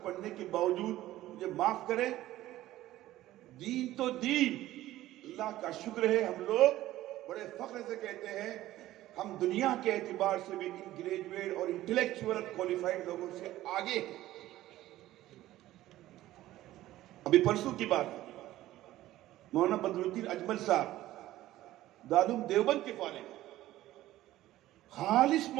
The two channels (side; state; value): left; quieter; 15.1 dB